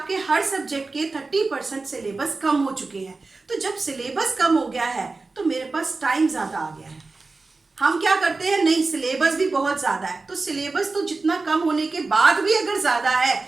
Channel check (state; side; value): quieter; left; 3.7 dB